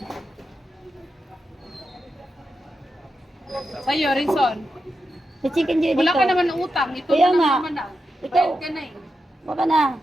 Sa'yo, Rinson. Si Chicken Joy dito. Wala ka naman ng utang. Ito Kaya na nga. naman na. Ito. Bayad ka na eh. Baka na.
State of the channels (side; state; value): both; normal; correlation 0.88